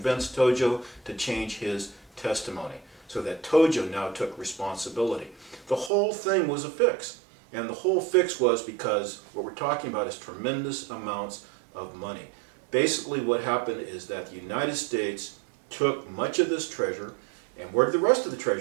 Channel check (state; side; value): drops out; left; at 5.9 s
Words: Tojo to change his testimony, so that Tojo now took responsibility. The whole thing was a fix, and the whole fix was because what we're talking about is tremendous amounts of money. Basically what happened is that the United States took much of this treasure, and where did the rest of the